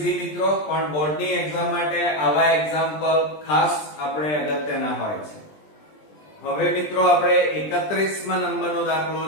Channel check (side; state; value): right; late; 20 ms